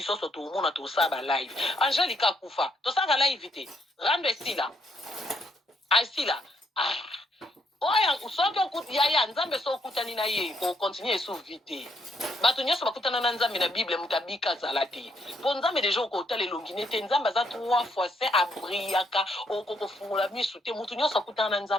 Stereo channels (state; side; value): normal; both; correlation 0.74